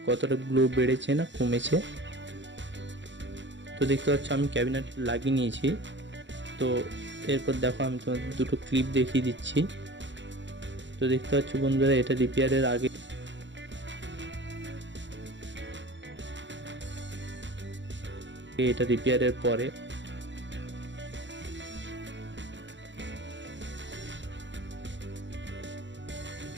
কতটা গ্লো বেড়েছে না কমেছে। তো দেখতে পাচ্ছ আমি ক্যাবিনেট লাগিয়ে নিয়েছি। তো এরপর দেখো, আমি তোমাদের দুটো ক্লিপ দেখিয়ে দিচ্ছি। তো দেখতে পাচ্ছ বন্ধুরা, এটা রিপেয়ারের আগে, এটা রিপেয়ারের পরে।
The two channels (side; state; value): left; late; 0.53 ms